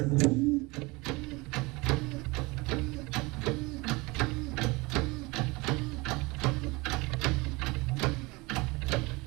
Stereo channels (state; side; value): quieter; left; 24.4 dB